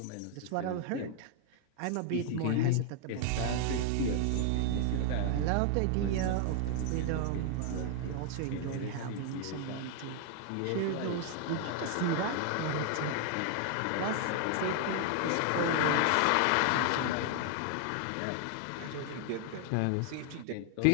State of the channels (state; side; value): different; both; correlation 0.00